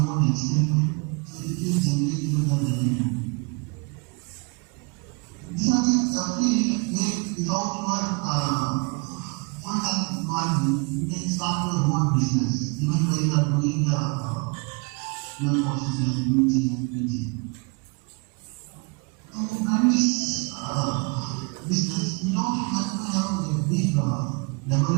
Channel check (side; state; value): left; quieter; 32.6 dB